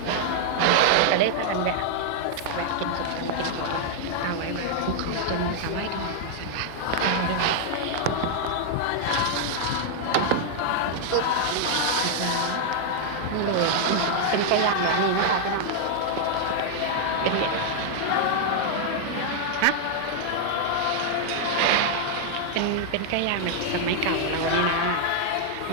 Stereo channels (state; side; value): different; both; correlation -0.01